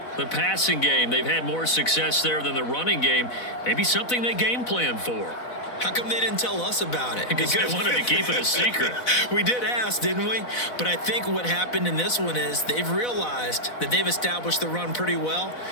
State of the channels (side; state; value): right; late; 4.0 ms